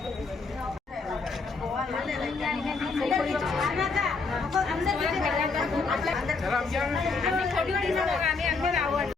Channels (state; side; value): quieter; right; 4.3 dB